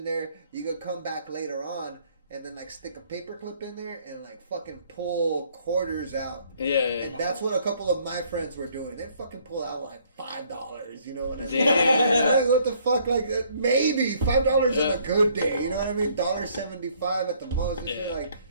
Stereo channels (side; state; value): both; inverted; correlation -0.63